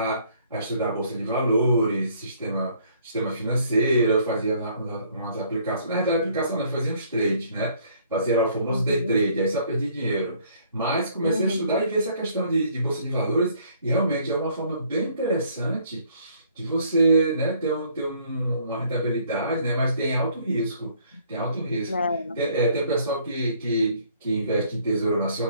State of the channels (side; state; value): both; inverted; correlation -0.62